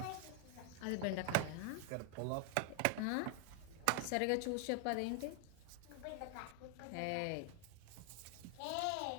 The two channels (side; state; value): both; different; correlation 0.00